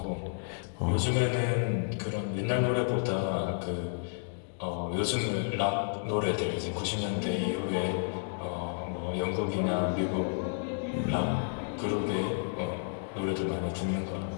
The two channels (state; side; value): silent; right; digital silence